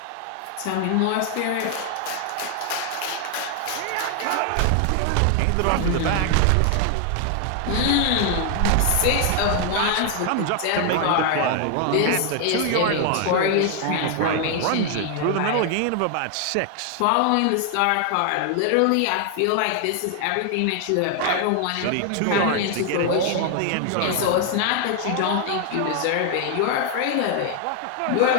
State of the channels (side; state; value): both; different; correlation 0.00